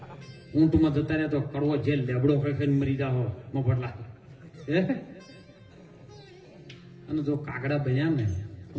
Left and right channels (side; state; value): both; identical; correlation 1.00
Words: ઊંટમાં જતા રહ્યા તો કડવો જેલ લેબડો ખેંચીને મરી જાઓ મફતલા. અને જો કાગડા બન્યા ને